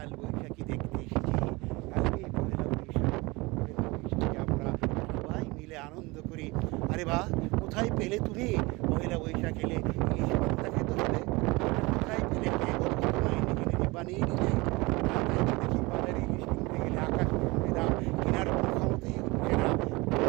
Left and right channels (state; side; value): quieter; left; 23.9 dB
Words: বৈশাখী দেখতে এসেছি। কালকে পহেলা বৈশাখী আমরা সবাই মিলে আনন্দ করি। আরে বাহ, কোথায় পেলে তুমি পহেলা বৈশাখ এলে ইলিশ পান্তা খেতে হবে? কোথায় পেলে কে বলছো তোমায় নিজে নিজে বানিয়ে নিলে? দেখি বাজারে ইলিশ কিনতে গেলে আকাশ দাম, কেনার কোনো ক্ষমতাই হচ্ছে না।